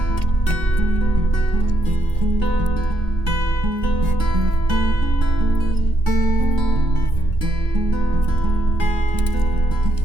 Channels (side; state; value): right; late; 1.6 ms